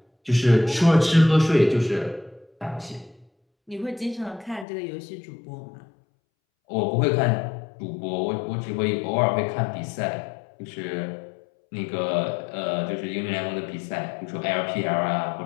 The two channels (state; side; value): drops out; right; at 4.7 s